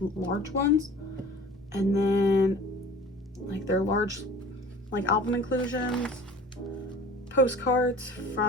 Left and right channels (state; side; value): normal; both; correlation 0.44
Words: ones. And then like their large like album inclusions, postcards